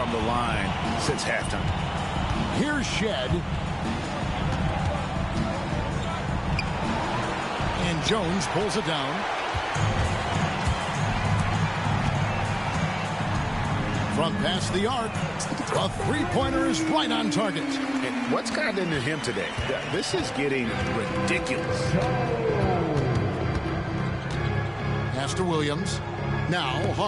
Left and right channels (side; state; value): both; identical; correlation 1.00